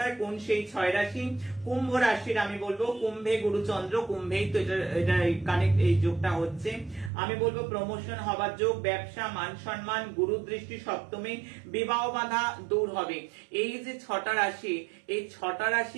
কোন সেই 6 রাশি। কুম্ভ রাশির আমি বলবো, কুম্ভে গুরুচন্দ্র, কুম্ভেই তো এটা কানেক্ট, এই যোগটা হচ্ছে। আমি বলবো প্রমোশন হবার যোগ, ব্যবসা, মান সম্মান, গুরু দৃষ্টি সপ্তমে, বিবাহ বাধা দূর হবে। এই যে 6টা রাশি, এই 6টা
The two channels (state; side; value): drops out; left; at 7.1 s